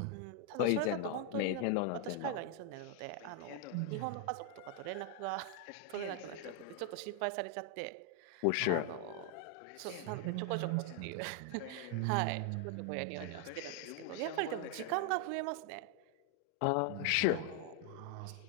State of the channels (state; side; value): different; both; correlation 0.00